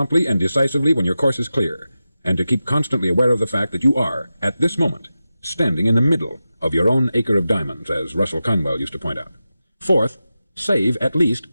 and decisively when your course is clear, and to keep constantly aware of the fact that you are, at this moment, standing in the middle of your own acre of diamonds, as Russell Conwell used to point out. Fourth, save at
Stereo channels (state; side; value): inverted; both; correlation -0.93